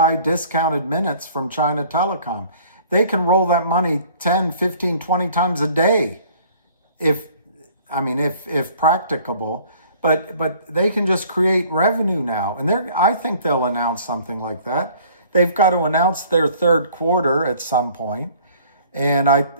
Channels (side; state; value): both; inverted; correlation -0.54